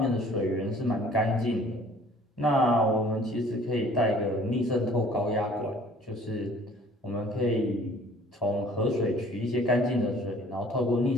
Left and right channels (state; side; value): normal; both; correlation 0.53